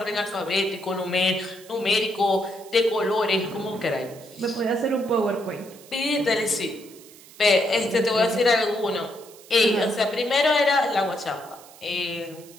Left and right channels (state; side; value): noise; right; hiss, 21 dB below the sound